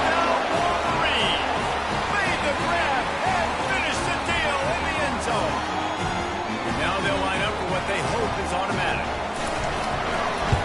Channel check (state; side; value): identical; both; correlation 1.00